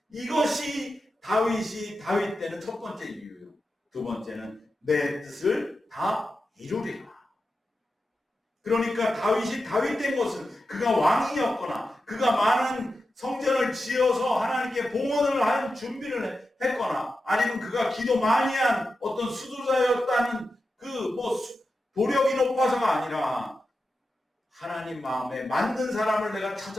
이것이 다윗이 다윗 때는 첫 번째 이유예요. 두 번째는 내 뜻을 다 이루리라. 그러니까 다윗이 다윗 된 것은 그가 왕이었거나 그가 많은 성전을 지어서 하나님께 봉헌을 한 준비를 했거나 아니면 그가 기도 많이 한 어떤 수도자였다는 도력이 높아서가 아니라 하나님 마음에 맞는 사람을 내가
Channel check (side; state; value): both; normal; correlation 0.91